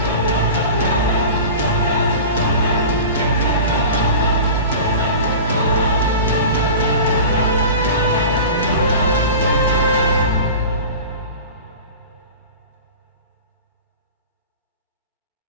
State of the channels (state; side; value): inverted; both; correlation -0.35